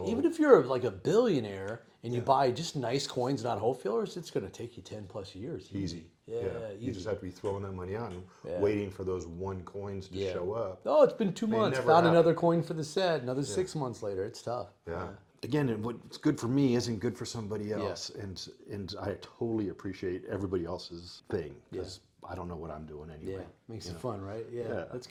even if you're like a billionaire and you buy just nice coins, not whole fillers, it's going to take you 10 plus years. Easy. Yeah. You just have to be throwing that money out and waiting for those one coins to show up. Oh, it's been 2 months. never Found happen. another coin for the set. Another 6 months later. It's tough. Again, what's good for me isn't good for somebody else, and I totally appreciate everybody else's thing because I don't know what I'm doing anyway. Makes it fun, right? Yeah, that's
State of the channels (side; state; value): both; identical; correlation 1.00